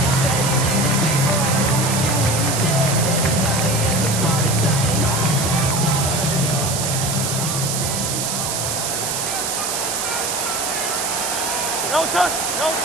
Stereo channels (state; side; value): noise; right; hiss, 1 dB below the sound